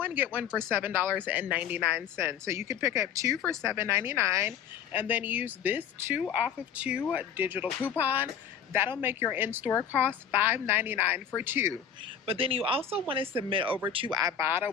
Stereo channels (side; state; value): right; quieter; 8.2 dB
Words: get one for $7.99. So you could pick up two for $7.99 and then use this 2 off of 2 digital coupon. That'll make your in-store cost $5.99 for two. But then you also want to submit over to Ibotta.